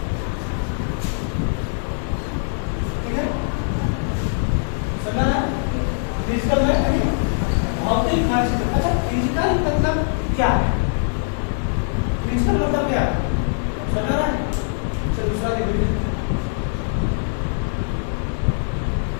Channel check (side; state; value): right; silent; digital silence